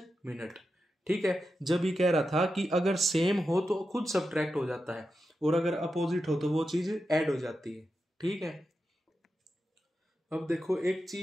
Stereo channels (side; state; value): both; normal; correlation 0.89